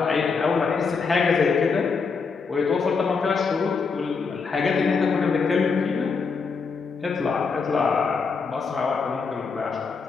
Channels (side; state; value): right; quieter; 5.0 dB